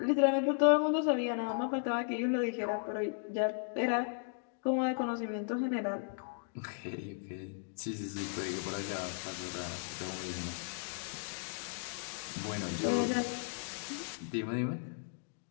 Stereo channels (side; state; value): right; silent; digital silence